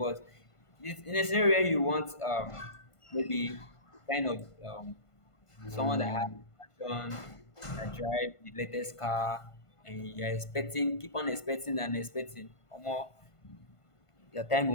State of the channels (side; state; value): right; late; 1.5 ms